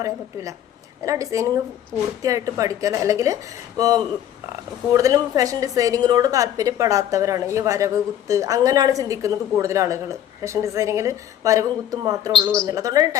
പറയാൻ പറ്റില്ല. അങ്ങനെ ഡിസൈനിങ് പൂർത്തിയായിട്ട് പഠിക്കാൻ, അല്ലെങ്കിൽ കൂടുതലും ഫാഷൻ ഡിസൈനിങ്ങിനോട് താല്പര്യപ്പെടാത്തവരാണ് ഈ വരവ് കുത്ത് അങ്ങനെയാണ് ചിന്തിക്കുന്നത് കൂടുതൽ ആളുകൾ. ഫാഷൻ ഡിസൈനിങ്ങിൽ വരവും കുത്തും മാത്രമേ ഉള്ളൂ എന്നുള്ള, അതുകൊണ്ടാണ്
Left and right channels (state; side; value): quieter; right; 10.9 dB